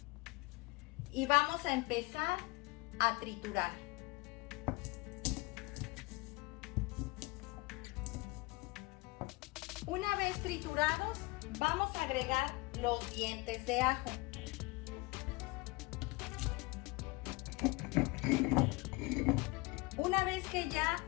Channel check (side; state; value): right; quieter; 24.0 dB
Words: Y vamos a empezar a triturar. Una vez triturados, vamos a agregar los dientes de ajo. Una vez que ya